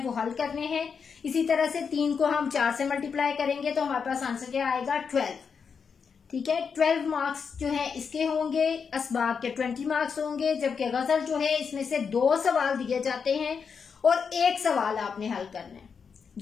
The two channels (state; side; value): quieter; right; 6.1 dB